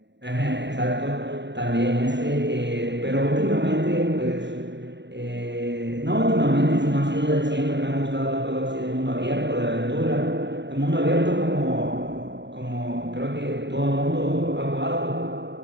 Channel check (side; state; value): left; late; 0.52 ms